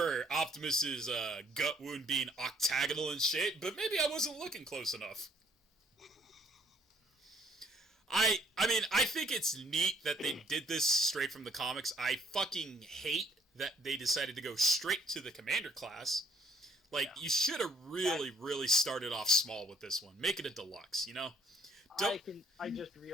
Optimus's gut wound being octagonal in shape, but maybe I wasn't looking close enough. I mean, I think it's neat that they did this straight from the comics. I fucking hate that they decided to go straight to the Commander class. You should have really started off small with this one. Make it a deluxe, you know? I just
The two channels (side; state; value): both; normal; correlation 0.64